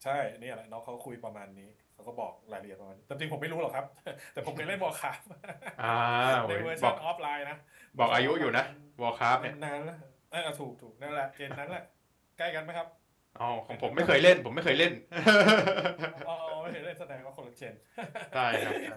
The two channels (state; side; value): identical; both; correlation 1.00